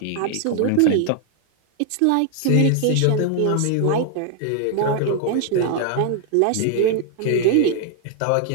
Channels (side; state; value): both; different; correlation 0.00